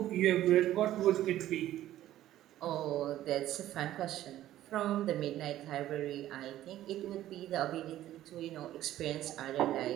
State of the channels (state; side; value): quieter; left; 13.5 dB